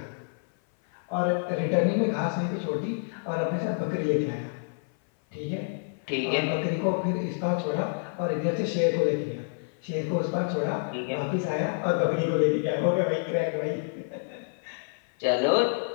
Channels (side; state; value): right; silent; 56 dB below the other